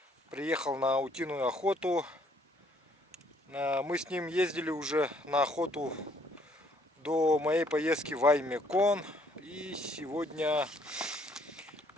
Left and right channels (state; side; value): normal; both; correlation 0.65